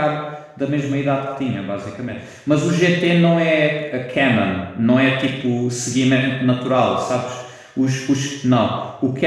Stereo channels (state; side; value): identical; both; correlation 1.00